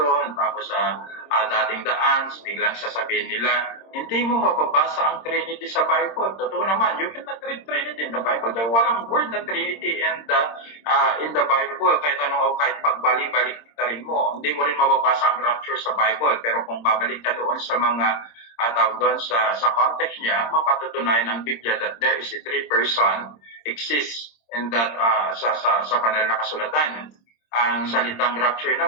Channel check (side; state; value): right; late; 26 ms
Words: tapos sa dating daan, biglang sasabihin nila, hindi mo mababasa ang Trinity sa Bible. Totoo naman, you cannot read Trinity in the Bible dahil walang word na Trinity in the Bible. Kahit kahit pagbalik-balik rin mo, hindi mo rin mababasa ang rapture sa Bible. Pero kung babalik ka doon sa mga tawag doon sa context niya, mapatutunayan ng Biblia that there is a three-person exists in that sa banal na kasulatan. Ang salitang rapture